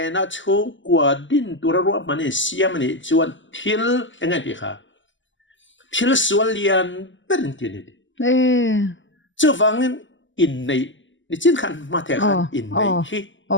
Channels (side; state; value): right; late; 0.55 ms